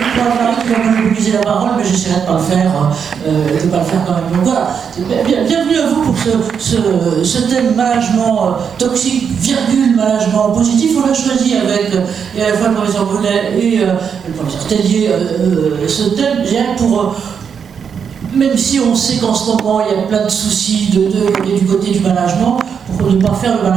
qui va monopoliser la parole, mais j'essaierai de ne pas le faire, quand même. Donc voilà, bienvenue à vous pour ce thème management toxique, management positif. On l'a choisi avec à la fois le professeur Brunet et le professeur Tellier, ce thème, pour même si on sait qu'en ce moment il y a plein de soucis du côté du management, pour ne pas faire le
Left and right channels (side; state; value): left; quieter; 7.0 dB